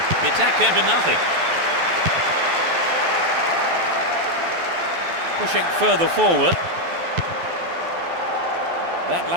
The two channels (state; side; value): late; left; 12 ms